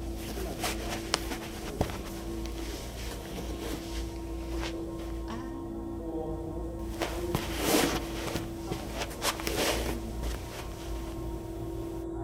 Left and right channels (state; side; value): identical; both; correlation 1.00